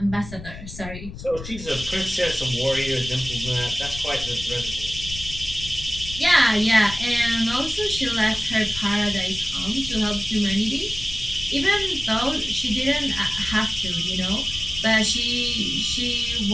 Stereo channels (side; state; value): left; noise; rumble, 12 dB below the sound